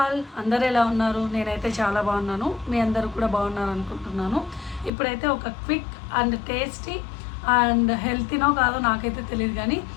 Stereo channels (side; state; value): right; drops out; at 4.9 s